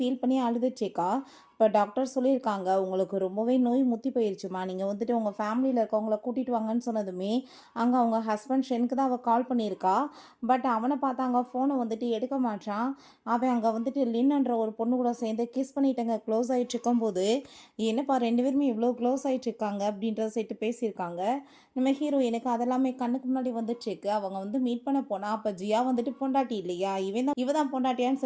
பண்ணி அழுதுச்சேக்கா. இப்போ டாக்டர் சொல்லியிருக்காங்க, உங்களுக்கு ரொம்பவே நோய் முத்தி போயிருச்சுமா, நீங்கள் வந்துட்டு உங்கள் ஃபேமிலியில் இருக்கவங்கள கூட்டிகிட்டு வாங்கன்னு சொன்னதுமே அங்கே அவங்க ஹஸ்பண்ட் ஷெனுக்கு தான் அவள் கால் பண்ணியிருக்கா. பட் அவனை பார்த்தா அங்கே ஃபோனை வந்துட்டு எடுக்க மாட்டான். அவன் அங்கே வந்துட்டு லின்ன்ற ஒரு பொண்ணு கூட சேர்ந்து கிஸ் பண்ணிட்டங்க க்ளோஸ் ஆகிட்டு இருக்கும்போது, என்னப்பா ரெண்டு பேருமே இவ்வளோ க்ளோஸ் ஆகிட்டு இருக்காங்க அப்படின்ற சைட்டு பேசியிருக்காங்க. நம்ம ஹீரோயினுக்கு அதெல்லாமே கண்ணுக்கு முன்னாடி வந்துட்டுருக்கு. அவங்க வந்து மீட் பண்ண போனால் அப்போ ஜியா வந்துட்டு பொண்டாட்டி இல்லையா, இவ தான் பொண்டாட்டியான்னு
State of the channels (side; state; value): both; identical; correlation 1.00